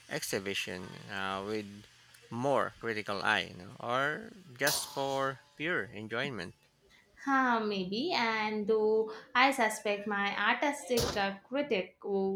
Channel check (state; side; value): identical; both; correlation 1.00